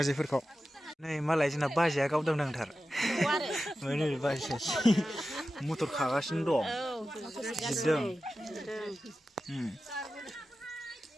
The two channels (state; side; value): normal; both; correlation 0.93